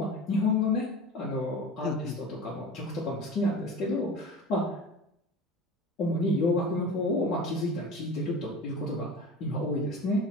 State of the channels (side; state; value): both; normal; correlation 0.34